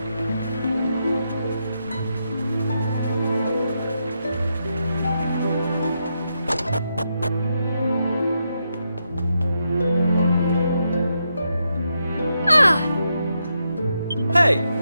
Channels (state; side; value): inverted; both; correlation -0.82